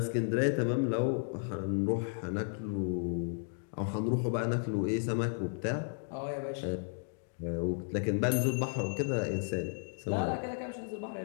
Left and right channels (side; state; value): right; silent; digital silence